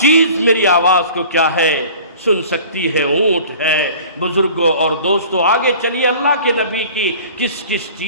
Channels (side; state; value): both; inverted; correlation -0.45